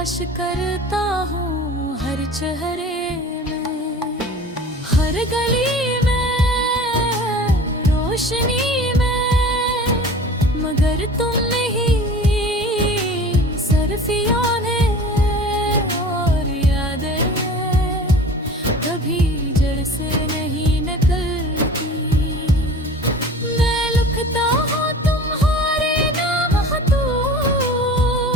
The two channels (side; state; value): both; normal; correlation 0.40